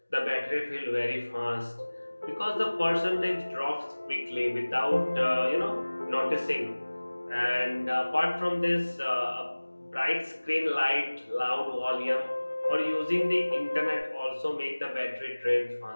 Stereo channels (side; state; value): both; inverted; correlation -1.00